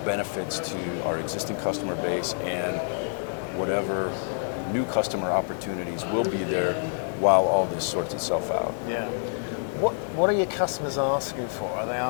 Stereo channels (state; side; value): silent; right; digital silence